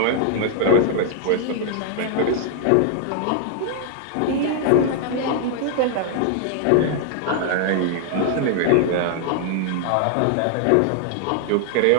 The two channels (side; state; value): both; different; correlation 0.00